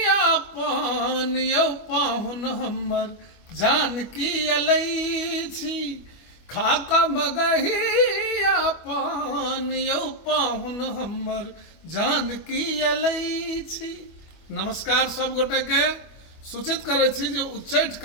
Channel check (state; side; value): late; right; 25 ms